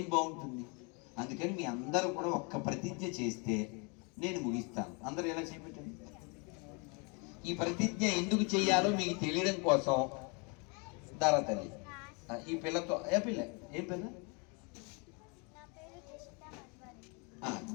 బాగుంటుంది? అందుకని మీ అందరూ కూడా ఒక్క ప్రతిజ్ఞ చేస్తే నేను ముగిస్తాను. అందరూ ఎలా చేపెట్టండి. ఈ ప్రతిజ్ఞ ఎందుకు చేయాలో మీకు తెలియడం కోసం దారా తల్లి ఈ పిల్లతో ఏం పిల్ల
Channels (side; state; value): right; quieter; 32.8 dB